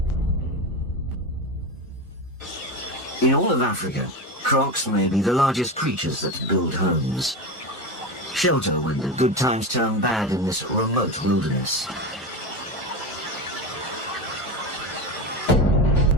In all of Africa, Crocs may be the largest creatures that build homes. Shelter when the good times turn bad in this remote wilderness.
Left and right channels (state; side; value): normal; both; correlation 0.21